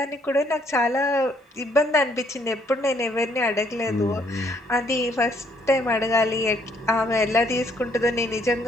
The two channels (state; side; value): normal; both; correlation 0.67